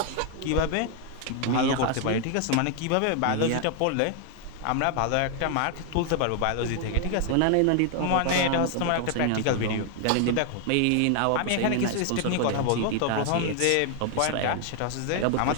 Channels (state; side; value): different; both; correlation 0.00